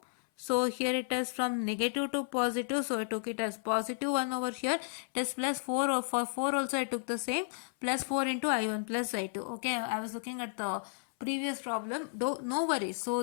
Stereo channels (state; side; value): silent; right; 56 dB below the other